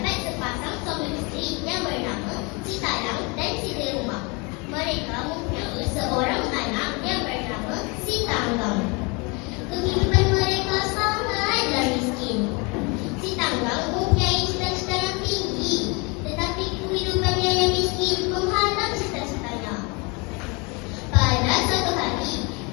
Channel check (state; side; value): quieter; right; 29.6 dB